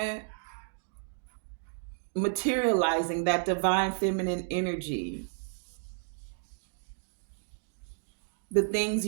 materializing that divine feminine energy, the things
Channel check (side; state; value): left; silent; digital silence